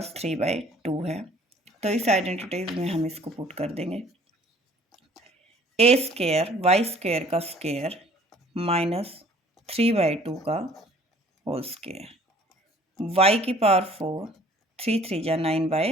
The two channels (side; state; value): both; normal; correlation 0.54